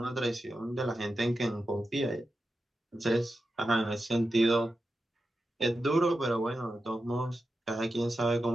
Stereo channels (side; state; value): both; normal; correlation 0.90